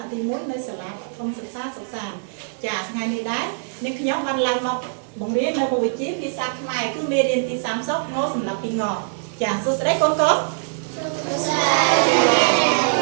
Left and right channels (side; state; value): left; silent; digital silence